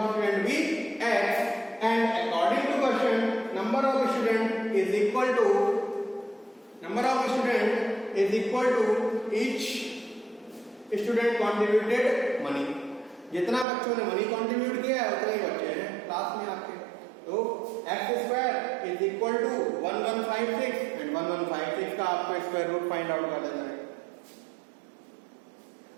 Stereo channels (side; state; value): left; drops out; at 13.7 s